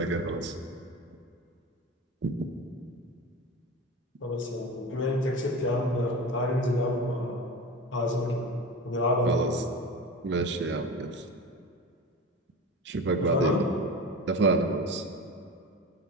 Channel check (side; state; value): both; normal; correlation 0.30